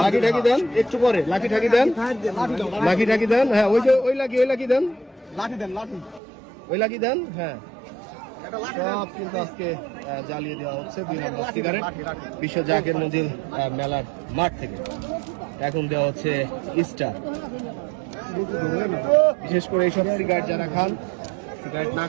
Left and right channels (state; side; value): drops out; left; at 6.2 s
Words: লাঠি ঠাকি দেন, একটু পরে লাঠি ঠাকি দেন, লাঠি ঠাকি দেন। হ্যাঁ, ওই যে ওই লাঠি দেন, লাঠি দেন, লাঠি ওই লাঠি দেন। হ্যাঁ, সব কিন্তু আজকে জ্বালিয়ে দেওয়া হচ্ছে 2 নম্বর সিগারেট বিশ্ব জাকের মঞ্জিল মেলার মাঠ থেকে। এখন দেওয়া হচ্ছে স্টার। বিশেষ করে এইসব সিগারেট যারা খান, সিগারেট না